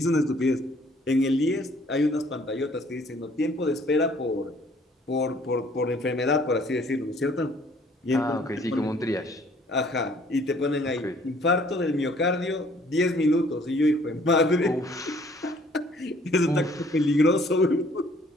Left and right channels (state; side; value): normal; both; correlation 0.59